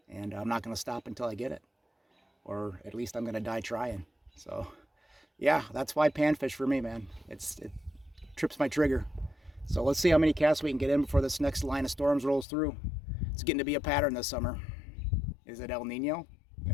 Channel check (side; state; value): right; drops out; at 12.5 s